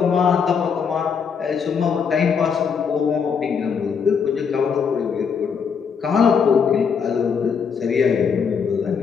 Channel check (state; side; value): quieter; right; 6.4 dB